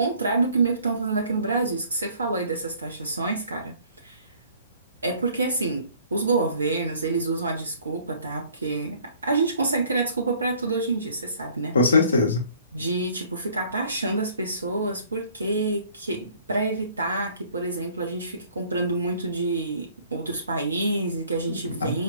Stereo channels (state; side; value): inverted; both; correlation -0.56